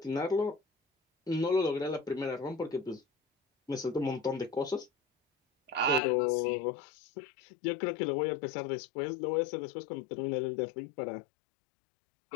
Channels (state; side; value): drops out; right; at 6.0 s